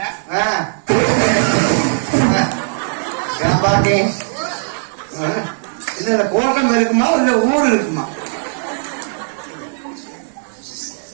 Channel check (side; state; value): left; silent; digital silence